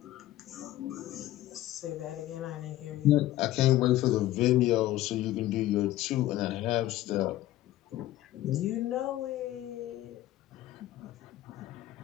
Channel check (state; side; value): quieter; right; 15.0 dB